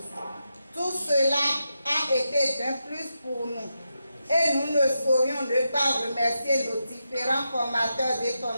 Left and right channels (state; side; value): inverted; both; correlation -0.87